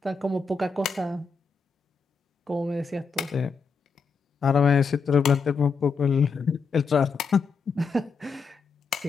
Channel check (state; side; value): quieter; right; 5.1 dB